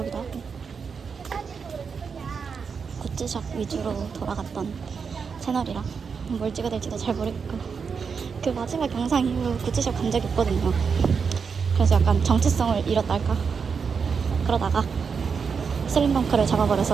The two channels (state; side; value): quieter; left; 5.9 dB